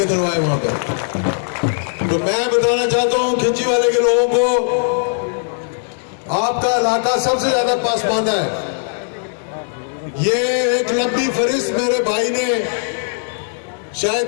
दिलवाए वहां पर। तो मैं बताना चाहता हूं खिंची वाले के लोगों को, आपका इलाका सबसे ज्यादा पासमानदा है। ये एक लंबी फरिस्त मेरे भाई ने, शायद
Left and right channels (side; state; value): right; silent; 65 dB below the other